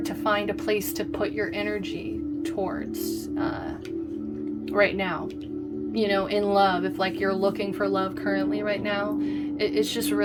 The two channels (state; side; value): identical; both; correlation 1.00